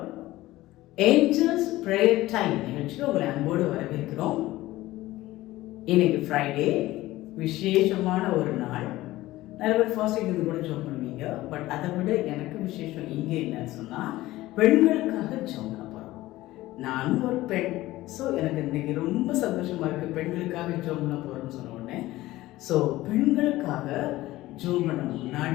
Angels prayer time நிகழ்ச்சிக்கு உங்களை அன்போடு வரவேற்கிறோம். இன்னைக்கு ஃப்ரைடே, விசேஷமான ஒரு நாள். நிறைய பேர் ஃபாஸ்டிங் இது கூட ஜோம் பண்ணுவீங்க. பட் அதை விட எனக்கு விசேஷம் இங்கே என்னன்னு சொன்னால், பெண்களுக்காக ஜோம் பண்ண போகிறோம். நானும் ஒரு பெண். ஸோ எனக்கு இன்னைக்கு ரொம்ப சந்தோஷமாக இருக்குது. பெண்களுக்காக ஜோம் பண்ண போகிறோம்னு சொன்ன உடனே, ஸோ பெண்களுக்காக ஜோம் பண்ண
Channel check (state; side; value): quieter; right; 17.1 dB